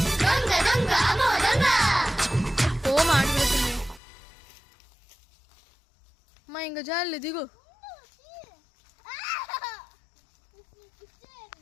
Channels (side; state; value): right; drops out; at 4.0 s